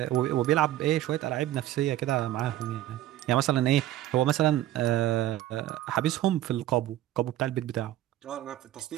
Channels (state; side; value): quieter; left; 13.8 dB